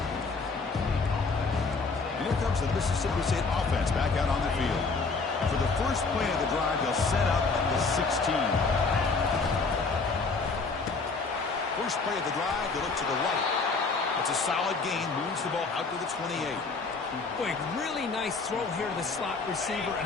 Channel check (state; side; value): quieter; right; 4.2 dB